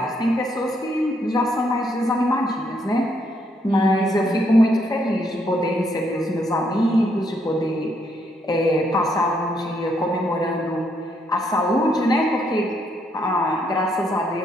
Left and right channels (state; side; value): normal; both; correlation 0.74